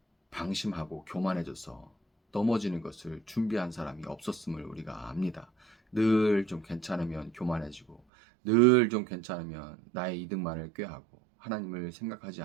방심하고 교만해져서 넘어지는 것을 준비한 사람이 없었음을 우리가 압니다. 늘 좀 괜찮으면 교만해지고 늘 좀 괜찮으면 나의 이득만을 꾀하고 하나님을 생각하지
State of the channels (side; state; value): left; drops out; at 8.0 s